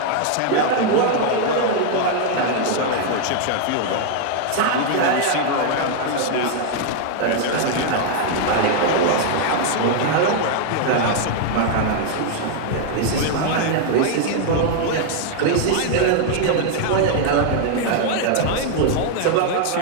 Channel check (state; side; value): different; both; correlation 0.00